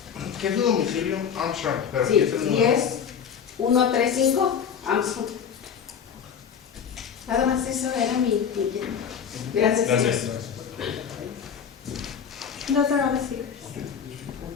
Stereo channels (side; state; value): right; quieter; 7.5 dB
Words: ¿Qué es su domicilio? Armstrong, pero Sí, ¿qué es el número? 10135 Armstrong. Nada más eso era mi inquietud. Gracias. Gracias. Those are all the speakers.